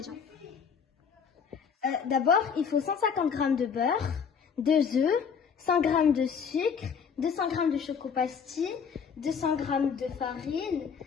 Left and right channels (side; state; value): right; quieter; 6.6 dB